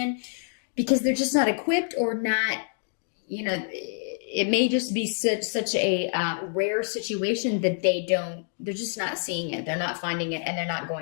because they're just not equipped, or not, it may just be such a rare situation that they're just not seeing it. They're not finding it, and they're not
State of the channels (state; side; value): silent; right; 59 dB below the other